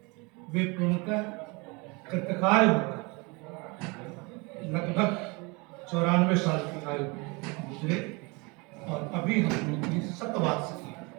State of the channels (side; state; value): left; quieter; 27.9 dB